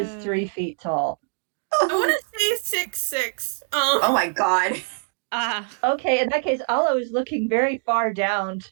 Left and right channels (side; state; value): left; silent; 55 dB below the other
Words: 3 feet tall. I want to say 6'6". Oh my god. Ah. Okay, in that case, Ollo is looking very far down